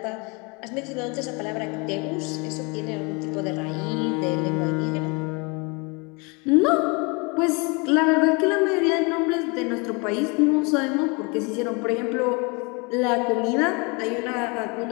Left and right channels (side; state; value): right; quieter; 30.2 dB